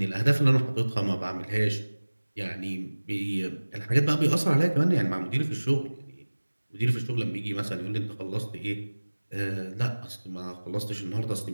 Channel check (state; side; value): inverted; both; correlation -1.00